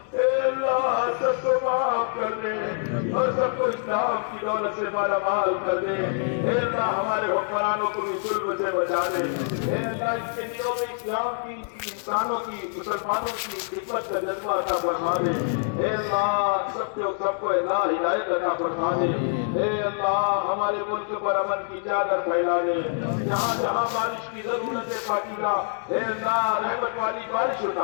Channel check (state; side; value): silent; right; digital silence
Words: اے اللہ سب کو معاف کر دے اور سب کو اسلام کی دولت سے مالا مال کر دے۔ اے اللہ ہمارے حکمرانوں کو بھی ظلم سے بچا دے۔ اے اللہ اس کے دلوں میں اسلام کی، انسانوں کی، مسلمانوں کی خدمت کا جذبہ عطا فرما دے۔ اے اللہ سب کو اللہ ہدایت عطا فرما دے۔ اے اللہ ہمارے ملک پر امن کی چادر پھیلا دے، جہاں جہاں بارش کی ضرورت ہے پاکیزہ اے اللہ رحمت والی بارش